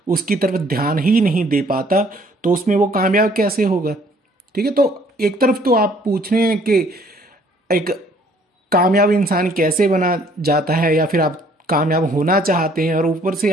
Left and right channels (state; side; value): normal; both; correlation 0.60